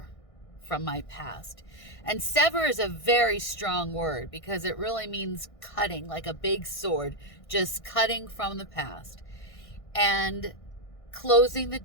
from my past. And sever is a very strong word because it really means cutting, like a big sword, just cutting from the past and closing the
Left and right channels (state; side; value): late; right; 1.6 ms